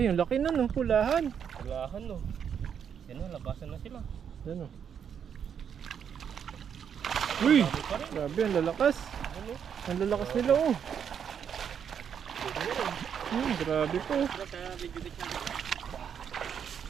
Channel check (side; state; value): left; quieter; 7.9 dB